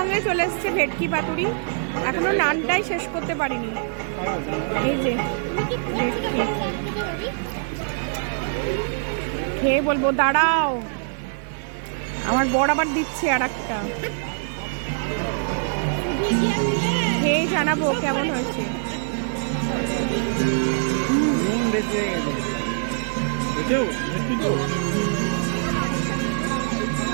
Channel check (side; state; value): left; silent; digital silence